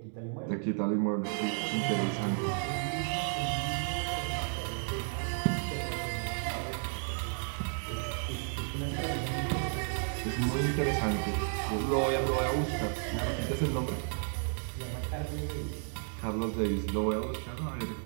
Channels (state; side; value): silent; left; 56 dB below the other